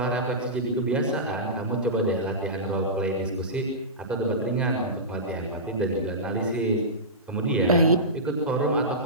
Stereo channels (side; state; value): both; normal; correlation -0.18